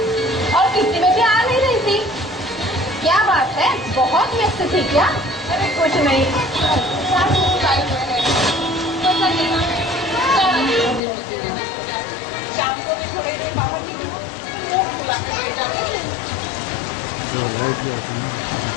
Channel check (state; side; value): drops out; right; at 11.0 s